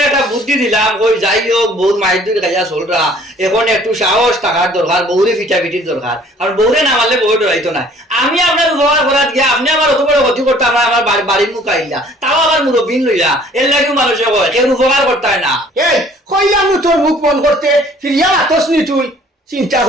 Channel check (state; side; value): normal; both; correlation 0.55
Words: একটা বুদ্ধি দিলাম। ওই যাই হোক বউর মায়ের দুই খাইয়া চলরা, এখন একটু সাহস থাকার দরকার, বউরে ফিটাফিটির দরকার। কারণ বউরে না মারলে বউ ডরাইতো না। আমি আপনার উপকার করার গিয়া আপনি আমার অত বড় ক্ষতি করতে আমার বাড়ির মুখ আইলা, তাও আমার মুরব্বিন লইলা, এর লাগেও মানুষে কয় কেউ উপকার করতে হয় না। এই কইলাম তোর মুখ মন করতে ফিরিয়া আতসনি তুই চিন্তা